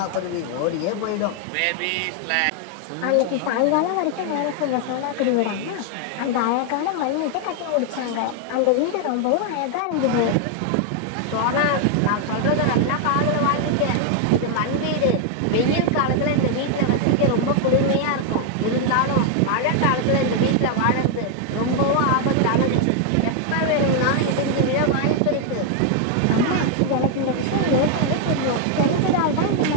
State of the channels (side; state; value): both; different; correlation 0.00